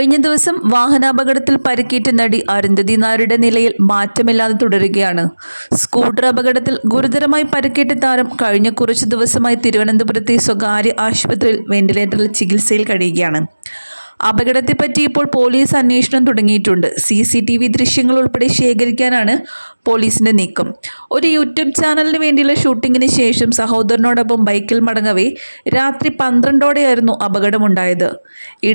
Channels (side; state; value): both; inverted; correlation -1.00